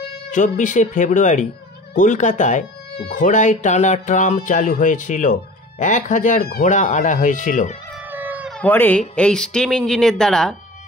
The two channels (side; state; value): both; normal; correlation 0.41